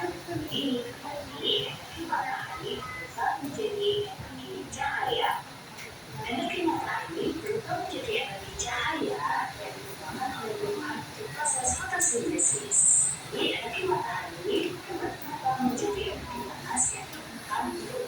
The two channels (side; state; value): both; identical; correlation 1.00